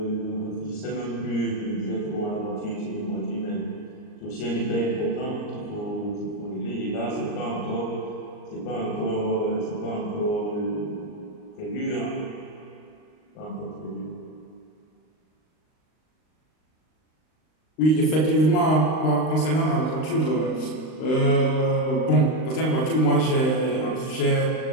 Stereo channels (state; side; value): late; right; 39 ms